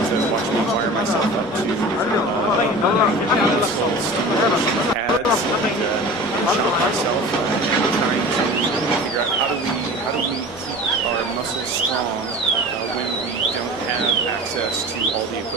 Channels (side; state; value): both; normal; correlation 0.37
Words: watch me wire myself up to muscle stimulation pads and shock myself and trying to figure out how do we keep our muscles strong when we don't have access to all the